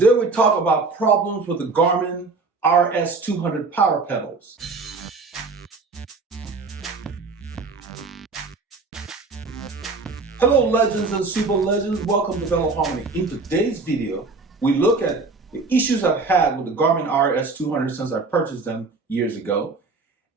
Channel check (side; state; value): left; quieter; 4.0 dB